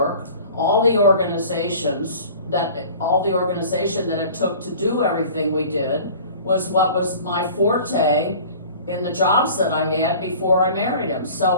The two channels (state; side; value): inverted; both; correlation -0.44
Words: all the organization that it took to do everything we did was what was my forte in the jobs that I had before I married him.